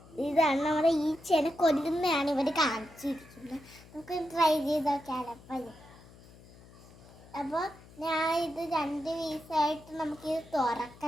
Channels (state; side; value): noise; left; hum, 22 dB below the sound